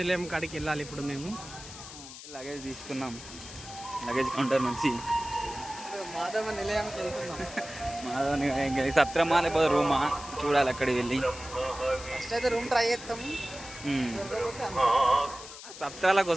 కాడికి వెళ్ళాలి. ఇప్పుడు మేము లగేజ్ తీసుకున్నాం. లగేజ్ కౌంటర్ నుంచి మాధవ నిలయానికి వెళ్తున్నాం. మాధవ నిలయం సత్రమా లేకపోతే రూమా చూడాలి. అక్కడికి వెళ్ళి ఫస్ట్ అయితే రూమ్ ట్రై చేస్తాం. సత్రాల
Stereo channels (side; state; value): left; noise; hiss, 14 dB below the sound